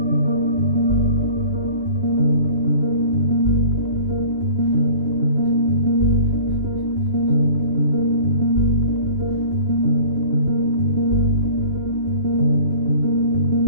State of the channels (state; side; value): late; left; 3.0 ms